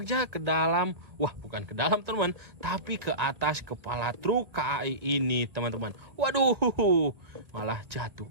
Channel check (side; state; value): left; late; 1.5 ms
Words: ke dalam. Wah, bukan ke dalam, teman, tapi ke atas kepala truk KAI ini, teman-teman. Waduh, malah jatuh.